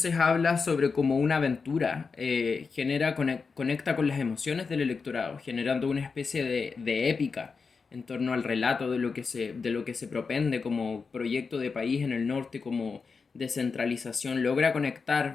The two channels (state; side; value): quieter; right; 5.0 dB